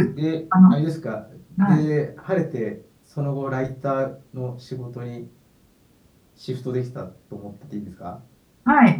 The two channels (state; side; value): identical; both; correlation 1.00